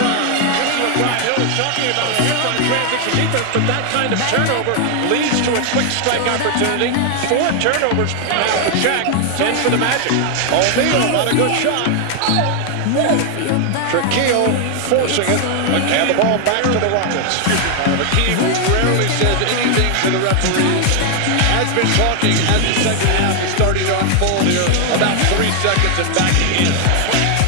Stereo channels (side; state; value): both; different; correlation 0.00